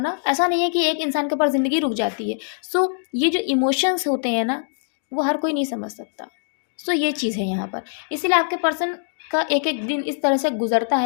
ऐसा नहीं है कि एक इंसान के ऊपर ज़िंदगी रुक जाती है। सो ये जो इमोशंस होते हैं ना, वो हर कोई नहीं समझ सकता। सो ये चीज़ है यहाँ पर। इसीलिए आपके पर्सन का एक-एक दिन इस तरह से गुज़रता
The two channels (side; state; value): right; silent; digital silence